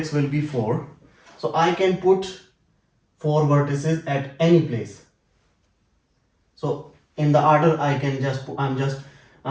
will be 4. So I can put 4 vertices at any place. So in the order I can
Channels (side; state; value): both; identical; correlation 1.00